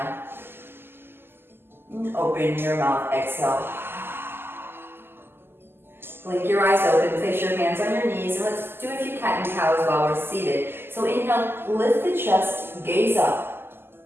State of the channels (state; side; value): late; left; 0.11 ms